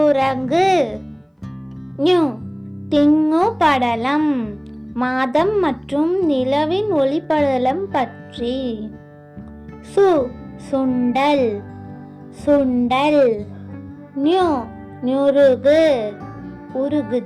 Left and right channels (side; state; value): both; identical; correlation 1.00